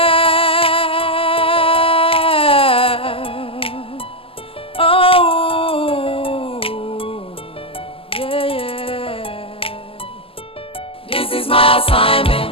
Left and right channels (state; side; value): late; right; 0.26 ms